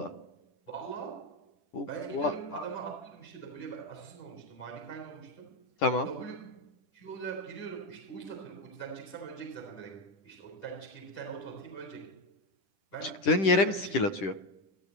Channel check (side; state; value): right; late; 10 ms